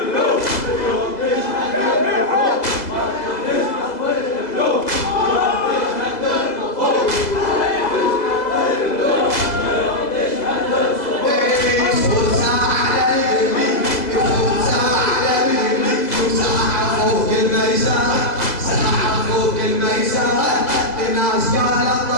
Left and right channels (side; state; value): right; late; 2.0 ms